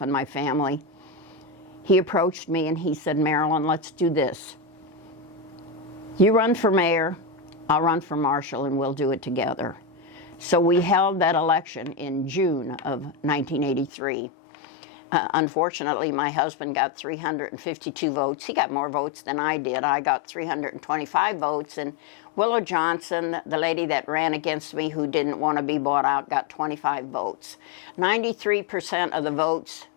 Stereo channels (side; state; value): right; drops out; at 13.9 s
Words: and my family, he approached me and he said, "Marilyn, let's do this. You run for mayor, I'll run for marshal, and we'll do it together." So we held that election in June of 1983. Unfortunately, my husband got 352 votes. He got more votes than I did. I got 325 votes, and Willow Johnson, the lady that ran against me who didn't want to be bought out, got 25 votes. 93% of the votes